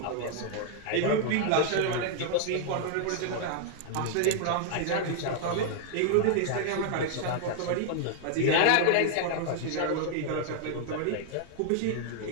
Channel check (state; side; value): different; both; correlation 0.00